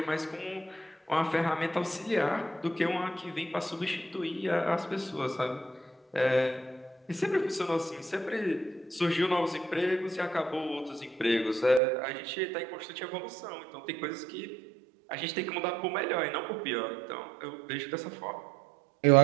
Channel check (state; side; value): drops out; left; at 11.8 s